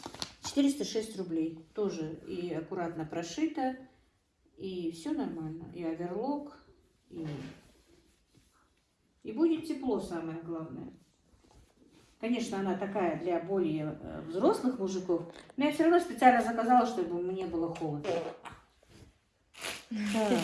406 рублей. Тоже и аккуратно прошита, и все нормально. И оверлок, и будет тепло, самое главное. Конечно, она такая для более взрослых мужиков, но я все равно специально заказала, чтобы мне было холодно.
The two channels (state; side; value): identical; both; correlation 1.00